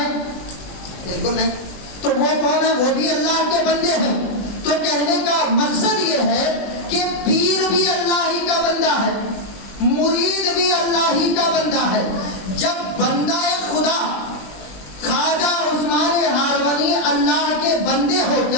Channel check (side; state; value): right; late; 20 ms